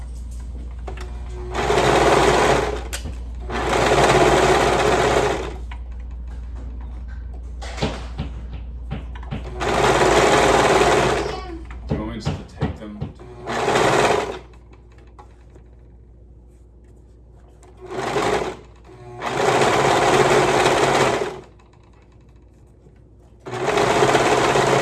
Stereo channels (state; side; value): identical; both; correlation 1.00